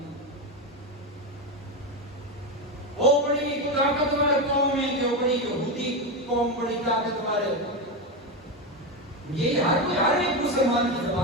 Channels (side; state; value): both; normal; correlation 0.13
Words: او بڑی طاقتور قوم ہے جو بڑی یہودی قوم بڑی طاقتور ہے، یہ ہر ایک مسلمان کی